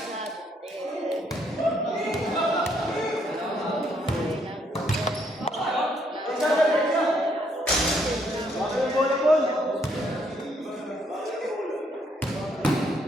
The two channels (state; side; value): normal; both; correlation 0.71